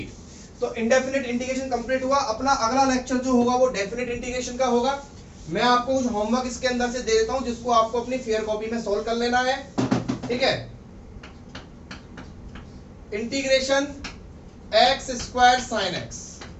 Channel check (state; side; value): identical; both; correlation 1.00